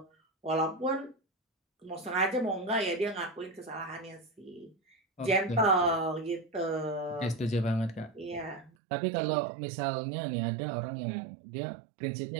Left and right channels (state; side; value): drops out; left; at 8.7 s